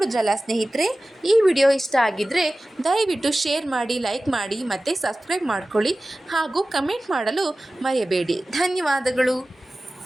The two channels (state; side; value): normal; both; correlation 0.96